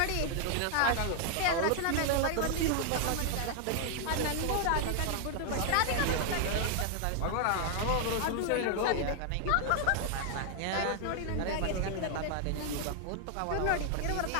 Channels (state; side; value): different; both; correlation 0.00